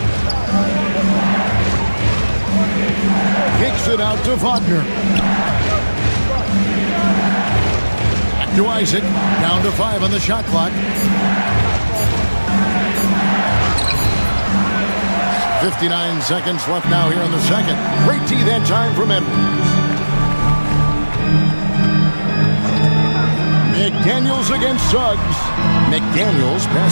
Kicks it out to Wagner. Back to Isaac. Down to 5 on the shot clock. 59 seconds left now here in the second. Great tee that time from Edwards. McDaniels against Suggs. McDaniels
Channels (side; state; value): both; inverted; correlation -1.00